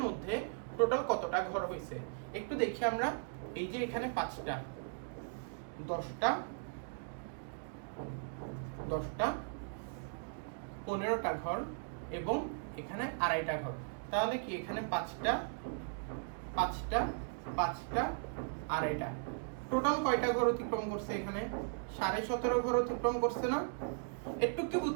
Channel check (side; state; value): left; silent; digital silence